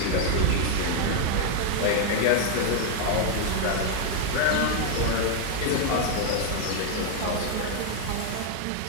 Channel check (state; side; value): different; both; correlation 0.00